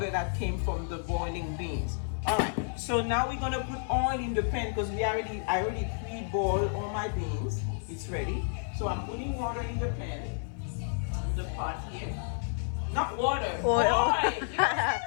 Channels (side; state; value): right; silent; digital silence